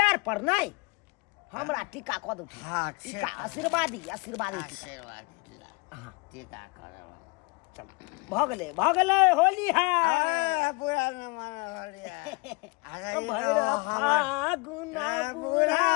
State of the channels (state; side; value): quieter; right; 27.8 dB